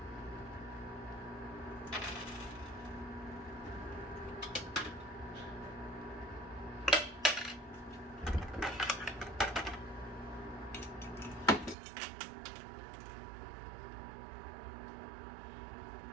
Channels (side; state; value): left; drops out; at 11.8 s